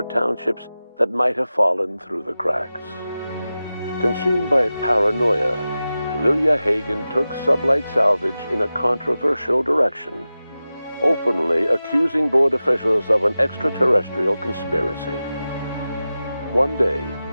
townships that might have fallen through the cracks. Consumed by paranoia, Lilia Hagen took Sublight Salvage in a controversial direction, openly accusing board officials of an extraterrestrial conspiracy. One day,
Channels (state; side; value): inverted; both; correlation -0.94